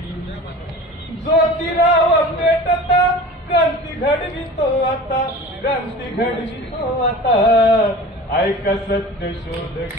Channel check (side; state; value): both; normal; correlation 0.38